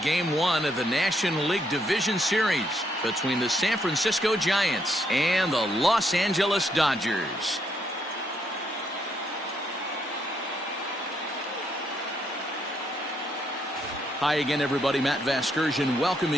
1 of the National League Division Series between the San Francisco Giants and the Los Angeles Dodgers. Hi again, everybody. Matt Vasgersian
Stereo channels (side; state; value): both; normal; correlation 0.74